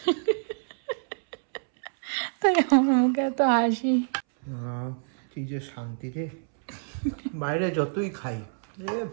তাই আমার মুখে এত হাসি। কি যে শান্তি রে, বাইরে যতই খাই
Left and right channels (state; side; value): silent; left; 60 dB below the other